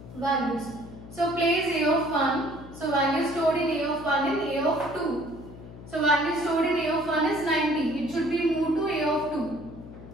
values. So place a of 1. So value stored in a of 1 and a of 2. So value stored in a of 1 is 90. It should be moved to a of 2.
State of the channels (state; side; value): noise; left; hum, 15 dB below the sound